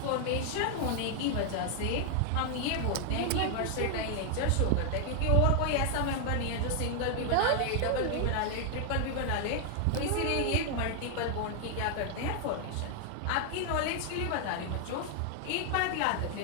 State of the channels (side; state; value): both; different; correlation 0.00